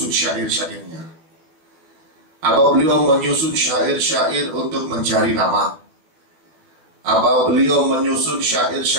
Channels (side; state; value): left; late; 12 ms